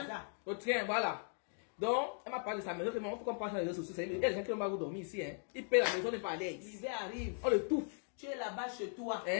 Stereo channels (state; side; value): silent; right; 52 dB below the other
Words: Au train, voilà. Donc, elle m'a parlé de sa maison, il faut qu'on passe dans les réseaux sociaux. Il y a des gens qui n'ont pas dormir ici. Hein. Ils payent la maison, n'est pas à l'aise. L'hiver arrive. On le touffe. Tu es là-bas chez toi.